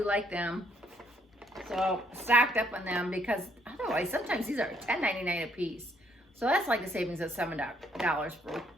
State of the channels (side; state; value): both; normal; correlation 0.69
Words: like them. So stocked up on them because otherwise sometimes these are $10.99 a piece. So that's like a savings of $7 for